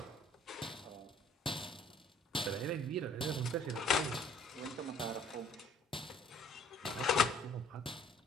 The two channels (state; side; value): normal; both; correlation 0.58